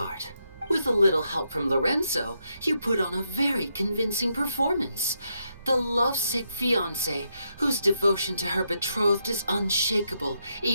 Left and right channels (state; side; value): inverted; both; correlation -0.81